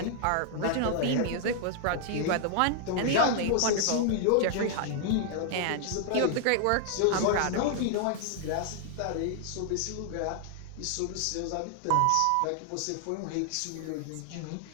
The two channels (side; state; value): both; different; correlation 0.00